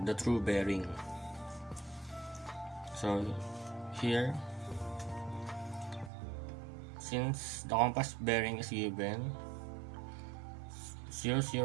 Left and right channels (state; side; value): drops out; left; at 6.1 s